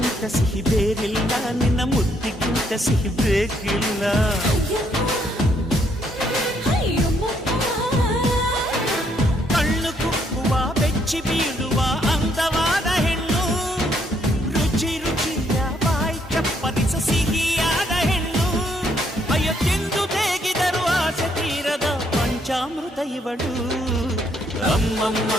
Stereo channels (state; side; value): normal; both; correlation 0.72